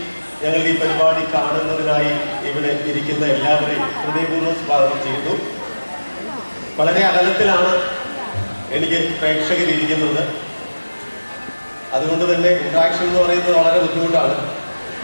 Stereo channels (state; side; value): inverted; both; correlation -1.00